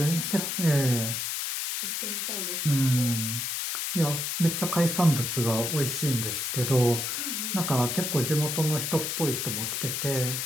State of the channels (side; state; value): left; noise; hiss, 2 dB below the sound